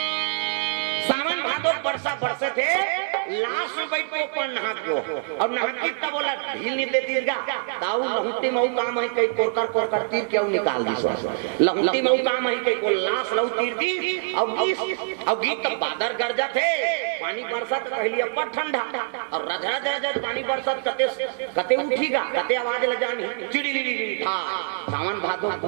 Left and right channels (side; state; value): left; silent; digital silence